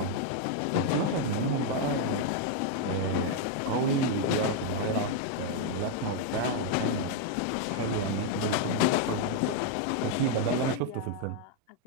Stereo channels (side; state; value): both; different; correlation 0.00